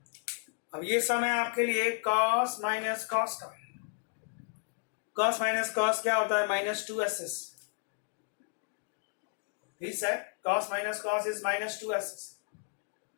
अब ये सम है आपके लिए cos माइनस cos का। cos माइनस cos क्या होता है? Minus 2ss। He said cos minus cos is minus 2ss।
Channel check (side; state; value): right; silent; 56 dB below the other